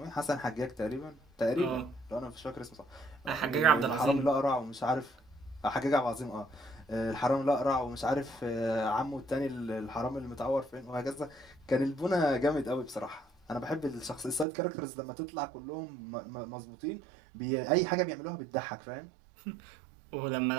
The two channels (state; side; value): drops out; left; at 14.5 s